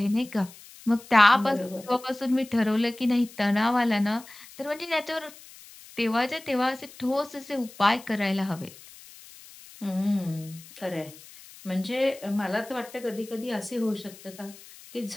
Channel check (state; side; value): noise; left; hiss, 20 dB below the sound